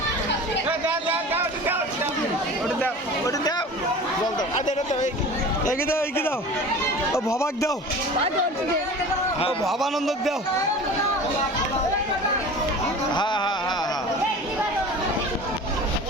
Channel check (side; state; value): both; normal; correlation 0.38